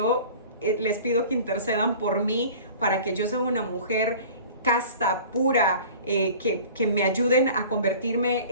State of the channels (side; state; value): both; inverted; correlation -0.43